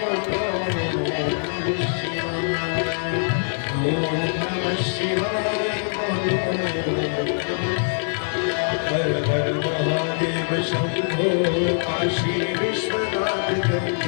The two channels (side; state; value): right; silent; digital silence